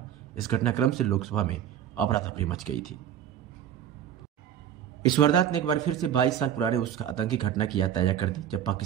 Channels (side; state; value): left; quieter; 10.0 dB